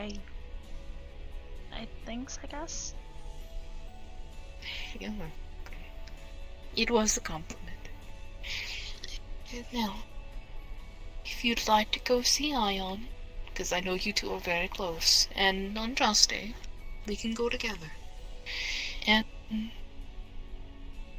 Thanks, I guess. Yeah. It was a compliment. Now, if you'd like to go see Ion, because I know you two are very close, and on Andraste, we can go together. And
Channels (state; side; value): identical; both; correlation 1.00